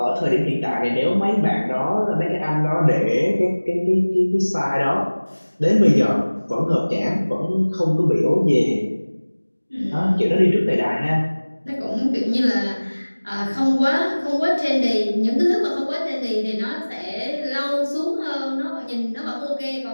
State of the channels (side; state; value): both; inverted; correlation -1.00